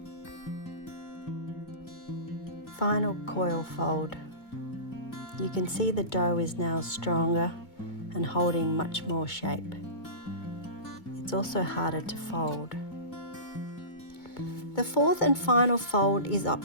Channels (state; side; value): late; right; 2.2 ms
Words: Final coil fold. You can see the dough is now stronger and holding much more shape. It's also harder to fold. The fourth and final fold is